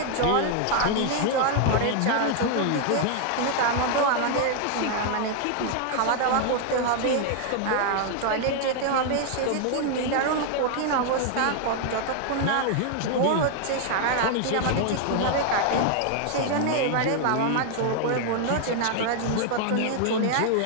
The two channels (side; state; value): both; different; correlation 0.00